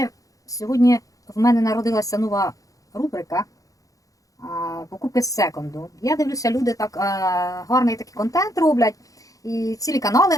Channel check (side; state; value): right; late; 0.17 ms